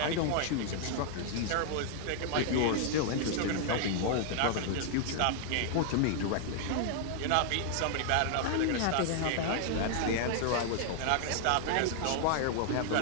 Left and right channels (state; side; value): different; both; correlation 0.00